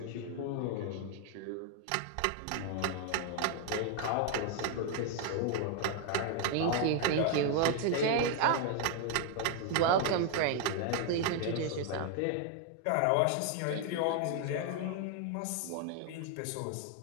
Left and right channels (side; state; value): both; different; correlation 0.00